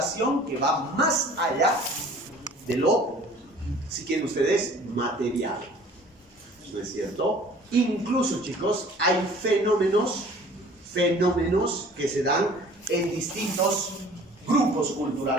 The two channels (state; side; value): normal; both; correlation 0.49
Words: que va más allá de lo, si quieren ustedes, material. ¿No es cierto? Incluso, chicos, hay fenómenos que se dan en distintos grupos